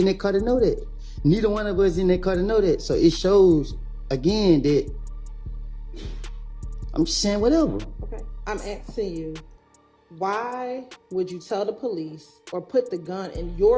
that car to know that. Neither one of us in that car to know that. So it shows, again, that I'm just saying whatever. Okay, I'm asking you, why would you tell the police or put the gun in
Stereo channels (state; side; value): identical; both; correlation 1.00